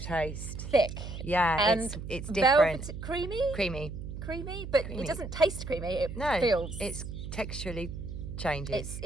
Thick. Yeah, and it's different. Creamy, but it doesn't taste creamy. It feels. It's texturally changes.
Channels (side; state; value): right; noise; hum, 8 dB below the sound